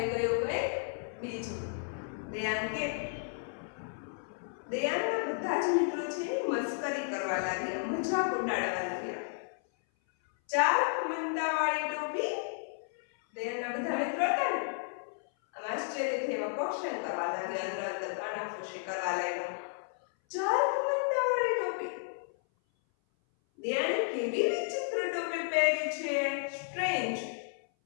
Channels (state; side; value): silent; right; 56 dB below the other